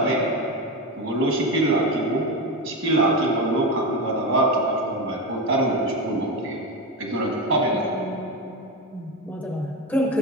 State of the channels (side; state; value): both; normal; correlation 0.17